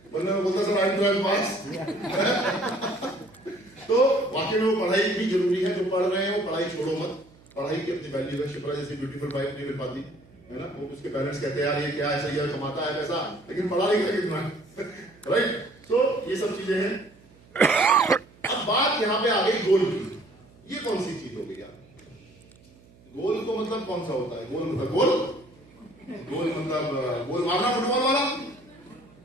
वरना मैं बोलता सर आई एम 12th पास। तो वाकई में वो पढ़ाई भी जरूरी है, जो पढ़ रहे हैं वो पढ़ाई छोड़ो मत, पढ़ाई की अपनी वैल्यू है। शिप्रा जैसी ब्यूटीफुल वाइफ नहीं मिल पाती है ना, वो उसके पेरेंट्स कहते हैं यार ये क्या है, सही है कमाता है पैसा, लेकिन पढ़ा लिखा कितना है, राइट। तो ये सब चीजें हैं। अब बात यहाँ पे आ गई गोल की, ये कौन सी चीज हो गई यार, गोल को मतलब कौन सा होता है, गोल मतलब गोल, गोल मतलब गोल मारना फुटबॉल वाला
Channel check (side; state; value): right; noise; hum, 27 dB below the sound